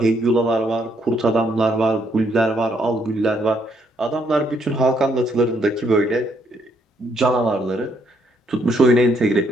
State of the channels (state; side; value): normal; both; correlation 0.71